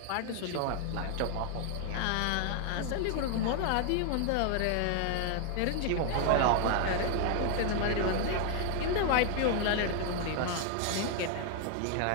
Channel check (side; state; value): both; different; correlation 0.00